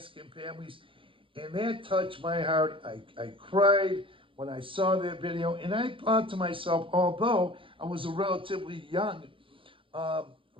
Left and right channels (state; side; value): late; left; 0.25 ms